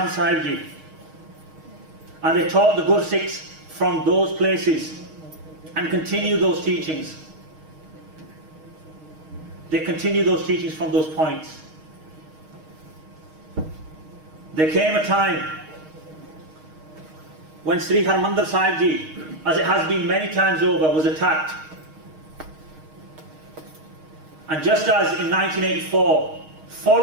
Sahib Ji. And they taught the Gursikhs from those places and continue those teachings. They continue those teachings from those points. There came a time when Sri Harmandir Sahib Ji, as it has been many times over, was attacked. And just as in 1984,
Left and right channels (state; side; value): late; left; 6.4 ms